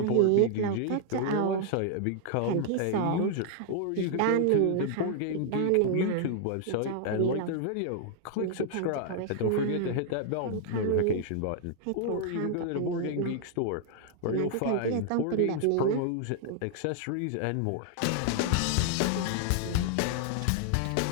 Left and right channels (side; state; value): both; different; correlation -0.01